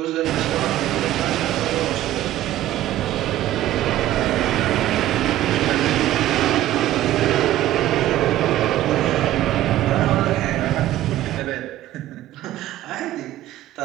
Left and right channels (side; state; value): left; quieter; 13.9 dB